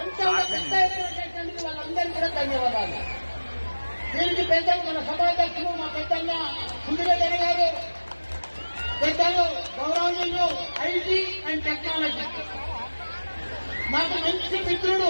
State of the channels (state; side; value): inverted; both; correlation -1.00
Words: వాళ్ళందరికీ కూడా ధన్యవాదాలు. దీనికి పెద్ద మన సభాధ్యక్షులు మా పెద్దన్న సుందరయ్య గారు, పెద్దలు గౌరవనీయులు ఐటీ అండ్ టెక్నాలజీ, నాకు మంచి